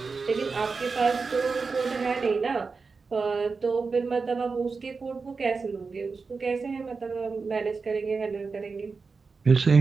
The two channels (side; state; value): left; quieter; 4.6 dB